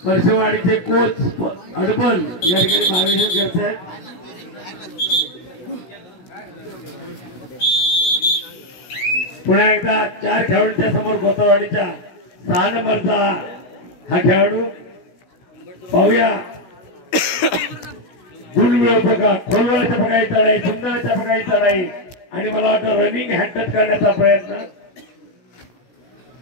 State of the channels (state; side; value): late; right; 16 ms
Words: परशेवाडीचे कोच अडबल या ठिकाणी मार्गदर्शन करत आहेत. पुन्हा एकदा 4 खेळाडूंच्या समोर गोतवाडीच्या 6 नंबरचा हा खेळाडू पाहूया. गुणवेळ प्रकार, खोलवळाच्या प्रकारे चढाई, सुंदरच्या प्रकारे चढाई आणि मला वाटतं रनिंग हॅटच करण्याचा प्रयत्न.